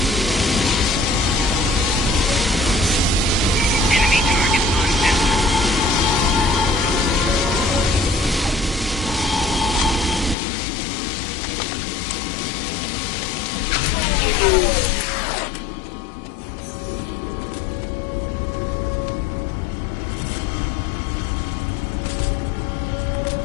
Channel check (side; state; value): right; drops out; at 10.4 s